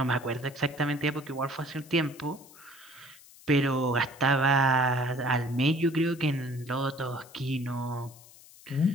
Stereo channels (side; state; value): left; noise; hiss, 22 dB below the sound